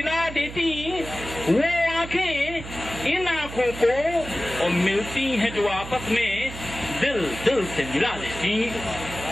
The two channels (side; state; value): right; noise; hum, 11 dB below the sound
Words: देती वो आंखें इन आंखों को, और मिलती हैं जो आपस में दिल दिल से मिला देती।